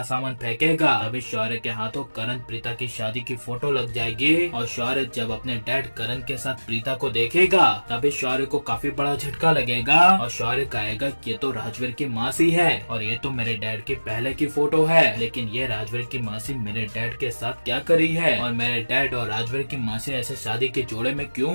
सामान फेंकेगा। तभी शौर्य के हाथों करण प्रीता की शादी की फोटो लग जाएगी और शौर्य जब अपने डैड करण के साथ प्रीता को देखेगा तभी शौर्य को काफी बड़ा झटका लगेगा और शौर्य कहेगा ये तो राजवीर की मासी है और ये तो मेरे डैड की पहले की फोटो है, लेकिन ये राजवीर की मासी मेरे डैड के साथ क्या करी है और मेरे डैड और राजवीर की मासी ऐसे शादी के जोड़े में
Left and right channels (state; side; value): inverted; both; correlation -1.00